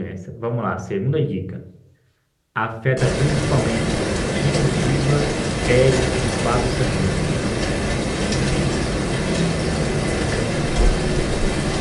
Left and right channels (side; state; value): both; identical; correlation 1.00